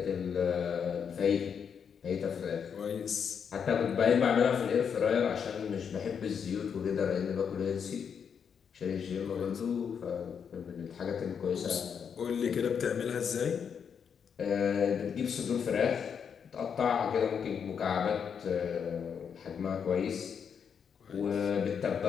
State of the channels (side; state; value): right; quieter; 7.1 dB